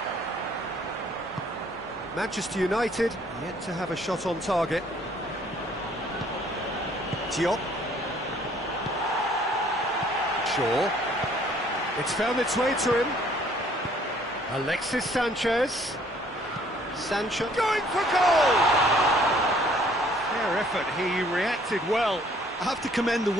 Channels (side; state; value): both; normal; correlation 0.60